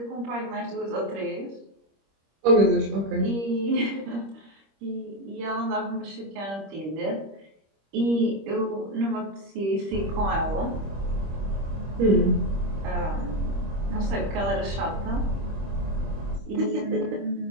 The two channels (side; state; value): left; late; 25 ms